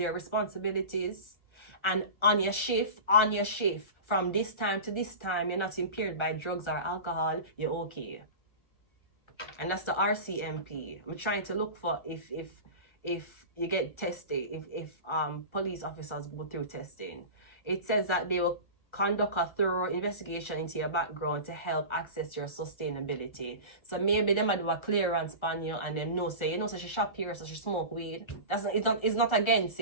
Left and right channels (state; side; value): late; right; 1.3 ms